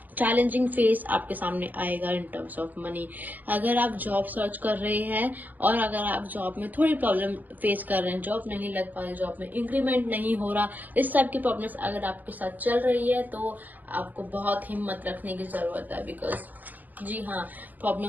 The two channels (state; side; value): late; left; 0.083 ms